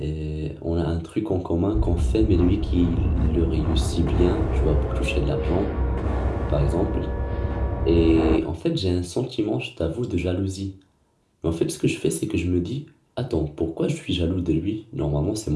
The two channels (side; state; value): both; identical; correlation 1.00